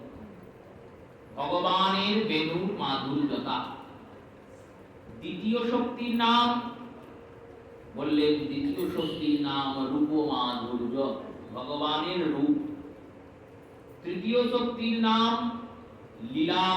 ভগবানের বেণুর মাধুর্যতা। দ্বিতীয় শক্তির নাম বললেন, দ্বিতীয় শক্তির নাম রূপ মাধুর্য, ভগবানের রূপ। তৃতীয় শক্তির নাম লীলা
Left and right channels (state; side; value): identical; both; correlation 1.00